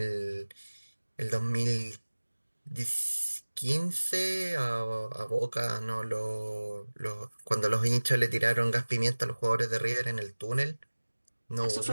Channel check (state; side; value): inverted; both; correlation -1.00